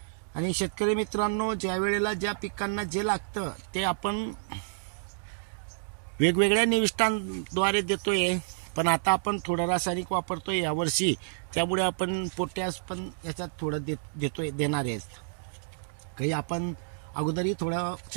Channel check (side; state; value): left; silent; digital silence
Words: आणि शेतकरी मित्रांनो, ज्या वेळेला ज्या पिकांना जे लागतं ते आपण वेगवेगळ्या निविष्ठांद्वारे देतोय। पण आता आपण थोडं रासायनिक वापरतोय यावर्षी, त्यामुळे आपण पोटॅश पण याच्यात थोडं देणार आहे। काही आपण अगोदरही थोडं